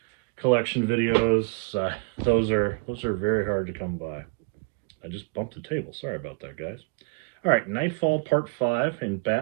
collection videos, those are very hard to come by. I just bumped the table. Sorry about that, guys. All right, Knightfall Part 5 in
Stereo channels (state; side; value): quieter; left; 31.6 dB